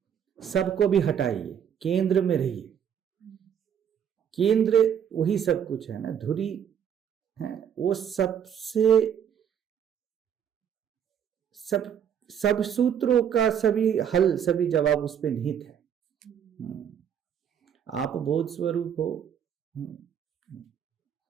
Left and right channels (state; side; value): quieter; left; 8.6 dB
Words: सबको भी हटाइए, केंद्र में रहिए। केंद्र वही सब कुछ है ना, धुरी है वो, सबसे सब सूत्रों का सभी हल, सभी जवाब उस पे निहित है। आप बोध स्वरूप हो,